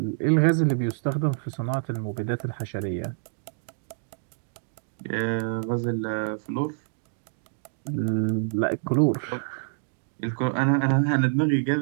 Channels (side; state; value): left; silent; digital silence